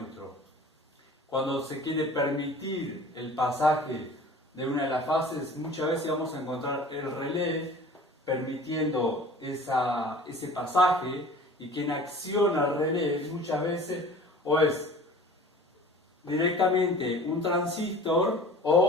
Cuando se quiere permitir el pasaje de una de las fases, muchas veces vamos a encontrar el relé permitiendo ese pasaje, y quien acciona el relé muchas veces o es directamente un transistor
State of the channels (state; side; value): normal; both; correlation 0.44